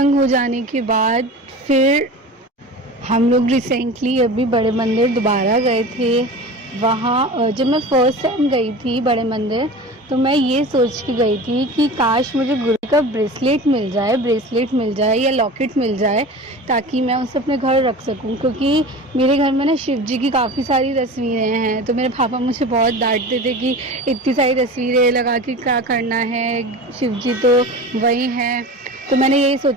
हो जाने के बाद फिर हम लोग रिसेंटली अभी बड़े मंदिर दोबारा गए थे। वहाँ जब मैं फर्स्ट टाइम गई थी बड़े मंदिर, तो मैं ये सोच के गई थी कि काश मुझे गुरु का ब्रेसलेट मिल जाए या लॉकेट मिल जाए, ताकि मैं उसे अपने घर रख सकूं। क्योंकि मेरे घर में ना शिव जी की काफ़ी सारी तस्वीरें हैं, तो मेरे पापा मुझे बहुत डांटते थे कि इतनी सारी तस्वीरें लगा के क्या करना है, शिव जी तो वही हैं। तो मैंने यही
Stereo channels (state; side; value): normal; both; correlation 0.34